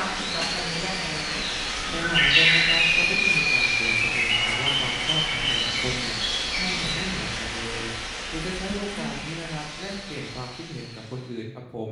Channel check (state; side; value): identical; both; correlation 1.00